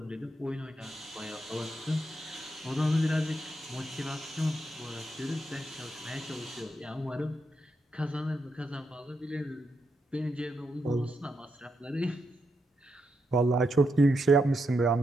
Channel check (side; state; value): both; normal; correlation 0.82